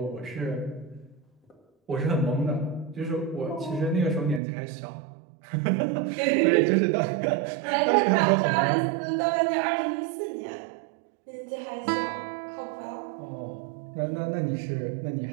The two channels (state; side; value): drops out; left; at 4.4 s